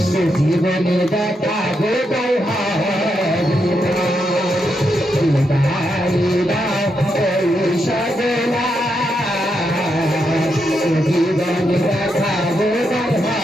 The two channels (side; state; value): both; normal; correlation 0.82